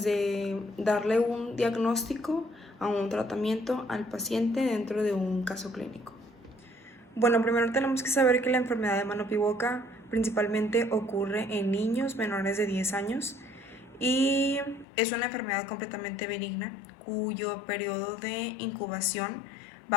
darle un diagnóstico a un tratamiento al paciente dentro de un caso clínico. Bueno, primero tenemos que saber que la enfermedad de mano-pie-boca principalmente ocurre en niños menores de 10 años y es una enfermedad completamente benigna cuyo periodo de incubación va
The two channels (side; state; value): right; drops out; at 14.9 s